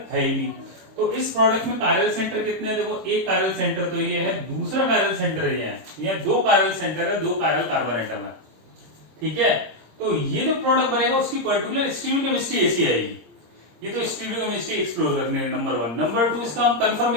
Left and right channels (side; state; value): left; late; 26 ms